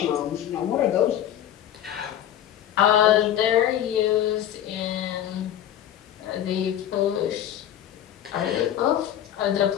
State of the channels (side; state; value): right; quieter; 11.1 dB